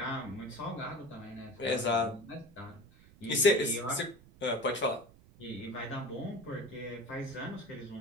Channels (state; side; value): noise; right; rumble, 23 dB below the sound